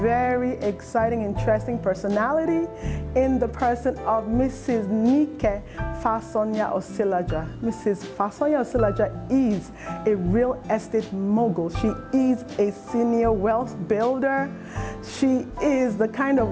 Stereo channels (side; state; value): both; identical; correlation 1.00